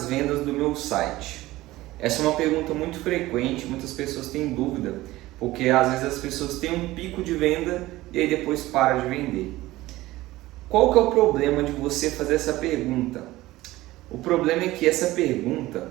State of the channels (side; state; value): left; quieter; 17.6 dB